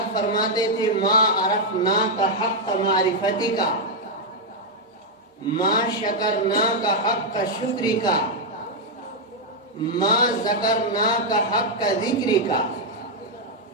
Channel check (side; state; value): both; normal; correlation -0.01